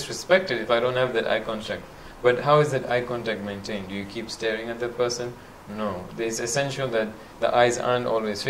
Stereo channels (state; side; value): identical; both; correlation 1.00